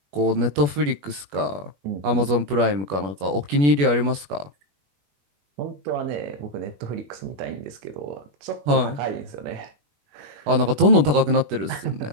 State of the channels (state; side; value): late; left; 21 ms